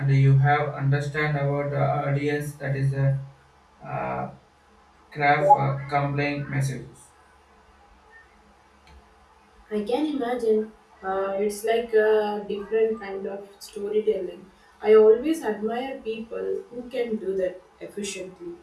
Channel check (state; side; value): identical; both; correlation 1.00